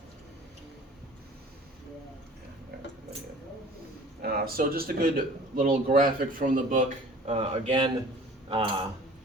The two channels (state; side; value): normal; both; correlation 0.47